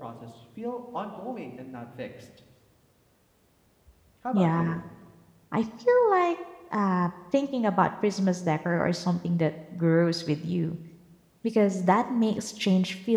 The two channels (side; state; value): both; identical; correlation 1.00